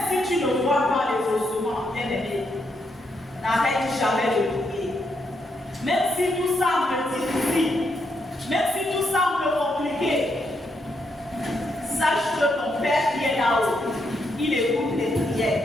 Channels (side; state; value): both; normal; correlation 0.79